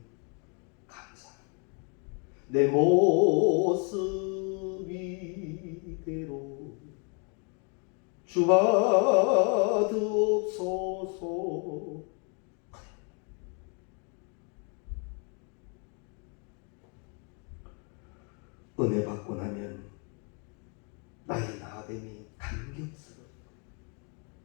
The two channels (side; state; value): right; quieter; 37.1 dB